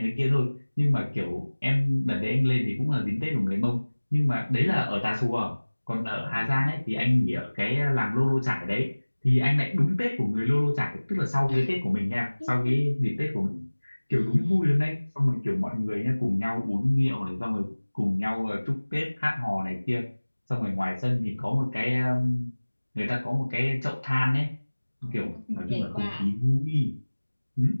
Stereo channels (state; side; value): inverted; both; correlation -1.00